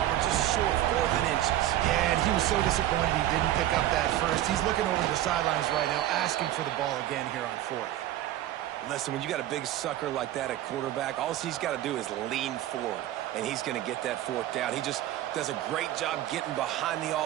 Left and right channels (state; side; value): quieter; left; 13.4 dB